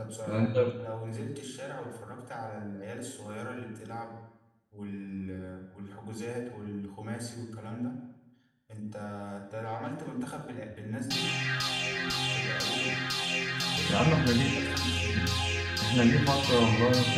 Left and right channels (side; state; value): both; identical; correlation 1.00